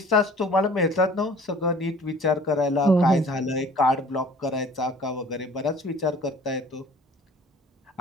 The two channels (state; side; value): normal; both; correlation 0.49